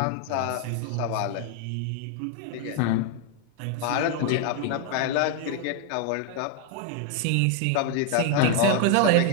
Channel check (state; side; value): different; both; correlation 0.00